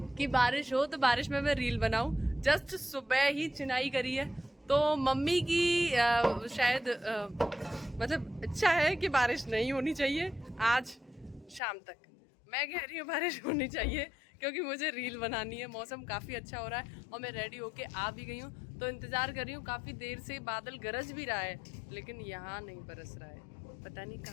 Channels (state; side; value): drops out; right; at 11.6 s